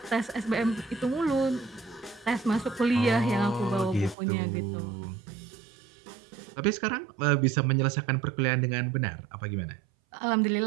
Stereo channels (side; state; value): left; drops out; at 4.2 s